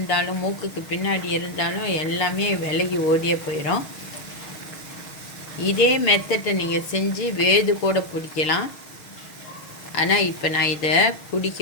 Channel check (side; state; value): right; late; 6.5 ms